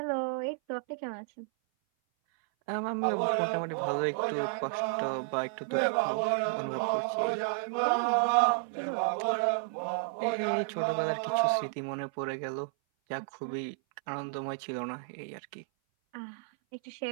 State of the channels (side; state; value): left; silent; 57 dB below the other